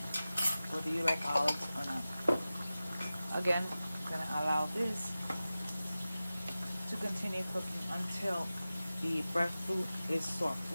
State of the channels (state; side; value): inverted; both; correlation -0.95